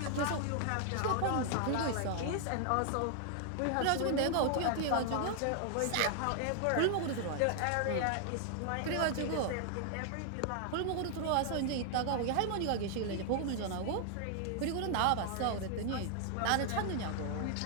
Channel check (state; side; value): different; both; correlation 0.00